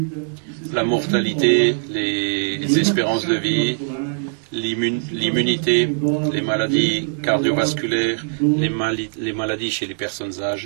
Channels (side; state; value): left; silent; digital silence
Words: la mortalité, les espérances de vie, l'immunité, les maladies cardiovasculaires, les maladies chez les personnes